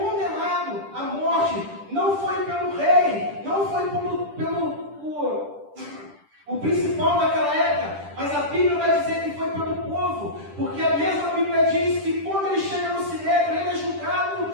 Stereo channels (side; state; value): left; late; 10 ms